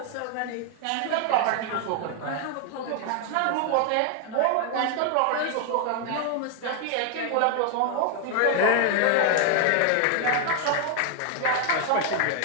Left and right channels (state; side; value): different; both; correlation 0.00